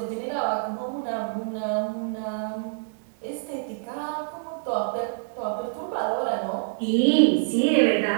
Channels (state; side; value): silent; left; digital silence